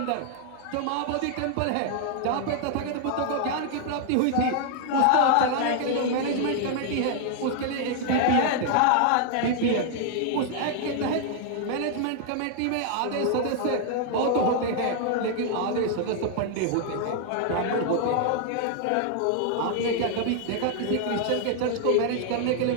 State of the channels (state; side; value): different; both; correlation 0.00